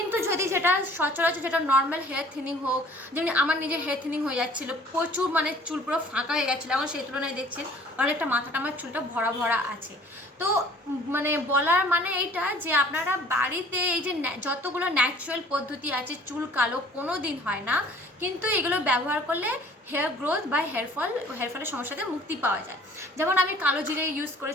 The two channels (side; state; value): both; normal; correlation 0.52